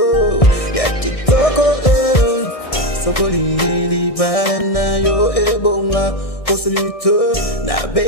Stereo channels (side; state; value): right; late; 1.6 ms